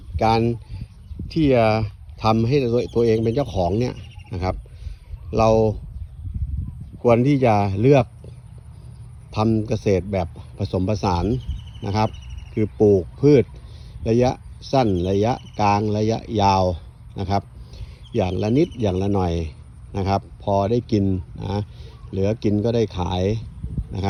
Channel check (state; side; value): identical; both; correlation 1.00